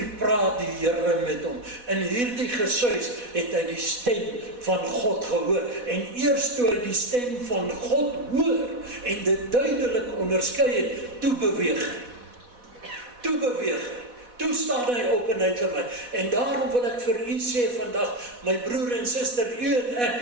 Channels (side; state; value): left; late; 4.1 ms